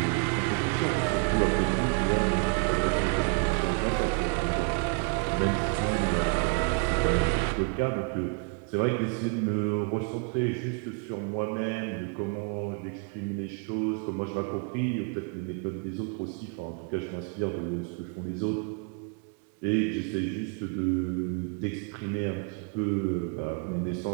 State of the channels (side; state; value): left; quieter; 37.3 dB